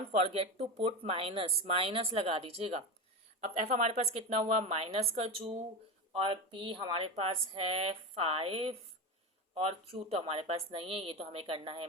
forget to put minus, minus लगा दीजिएगा। अब एफ हमारे पास कितना हुआ? -2, और पी हमारे पास है 5, और क्यू तो हमारे पास नहीं है, ये तो हमें करना है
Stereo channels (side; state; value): both; normal; correlation 0.20